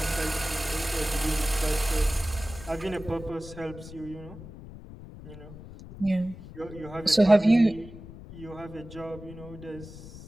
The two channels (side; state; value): left; noise; rumble, 15 dB below the sound